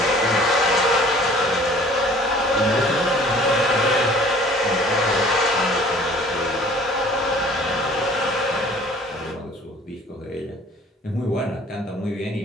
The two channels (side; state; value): both; normal; correlation 0.51